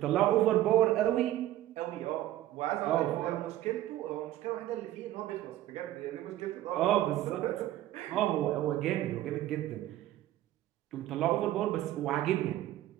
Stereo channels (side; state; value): left; quieter; 14.0 dB